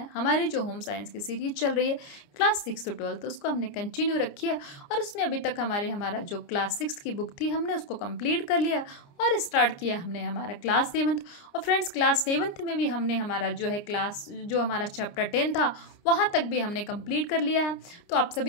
हमारी जो होम साइंस की सीरीज चल रही है क्लास 6 to 12, तो उसको हमने कंटिन्यू रखी है और उसमें अभी तक हमारा जो क्लास 6 की बुक थी हमने उसको कंप्लीट कर लिया और स्टार्ट किया हमने हमारा क्लास 7। और फ्रेंड्स, क्लास 7 में भी हमने हमारा जो हमारा चैप्टर 10 था वहाँ तक भी हमने कंप्लीट कर लिया है। तो आप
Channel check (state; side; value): late; right; 29 ms